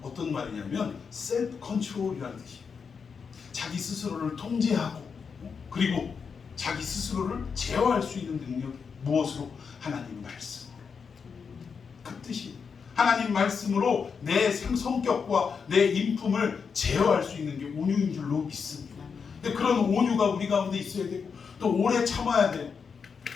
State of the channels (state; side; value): quieter; right; 5.9 dB